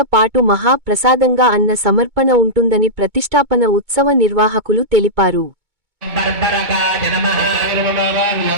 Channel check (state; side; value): late; left; 2.2 ms